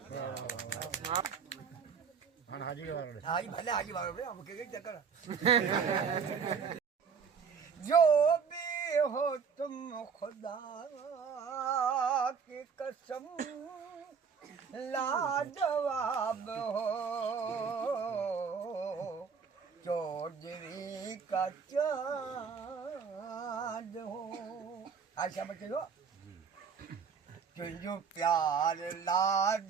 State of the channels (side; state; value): left; quieter; 6.2 dB